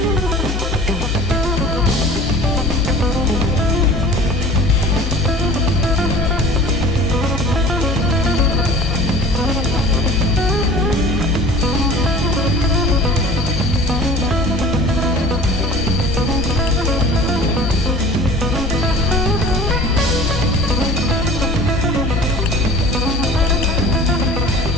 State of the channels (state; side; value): normal; both; correlation 0.44